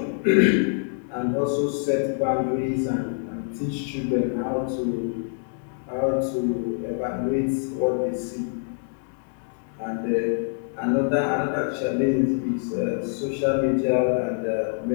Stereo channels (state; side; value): silent; right; 61 dB below the other